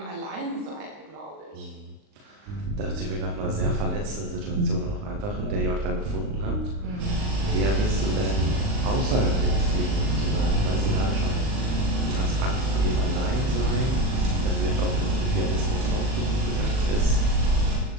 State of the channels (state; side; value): late; left; 39 ms